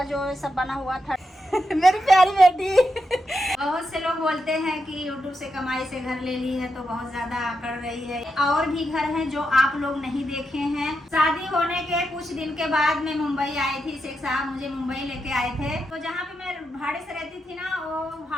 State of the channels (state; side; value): normal; both; correlation 0.85